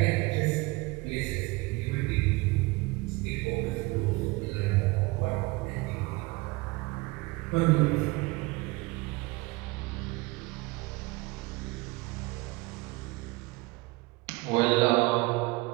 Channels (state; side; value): quieter; left; 23.4 dB